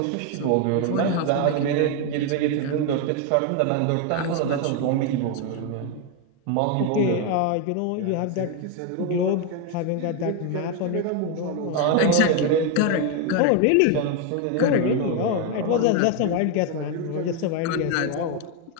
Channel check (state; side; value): different; both; correlation 0.01